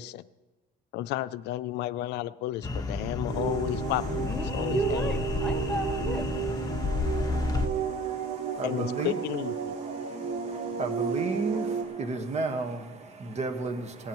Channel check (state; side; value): normal; both; correlation 0.43